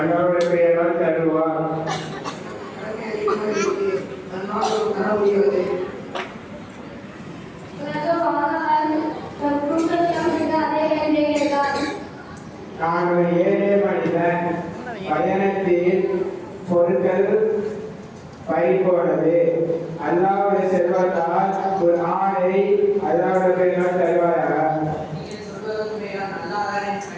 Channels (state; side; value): identical; both; correlation 1.00